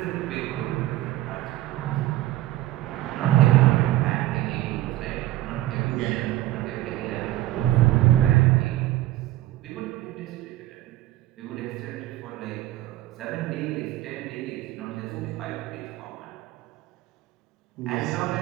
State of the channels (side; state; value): left; quieter; 15.4 dB